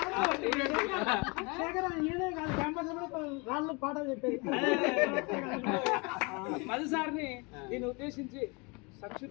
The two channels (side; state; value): right; quieter; 29.4 dB